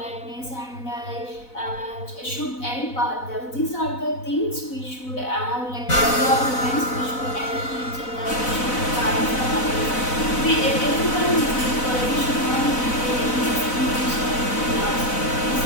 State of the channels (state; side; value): late; right; 4.0 ms